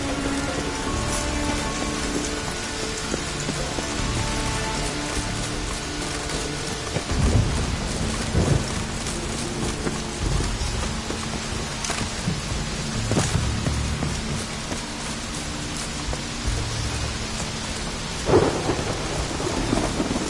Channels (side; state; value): both; identical; correlation 1.00